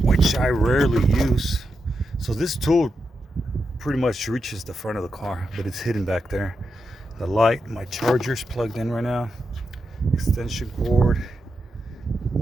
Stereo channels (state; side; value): normal; both; correlation 0.86